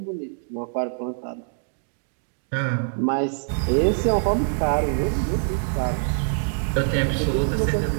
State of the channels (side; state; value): left; silent; digital silence